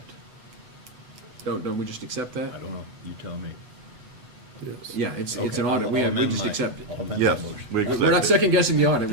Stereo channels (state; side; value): late; left; 8.1 ms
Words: Don't we just accept that? I don't know, you tell me. It's Yeah, it's Okay, an audit. I'll We amend just my- accept it. I'll amend my Yes, motion. we accept We're not it. second guessing the audit,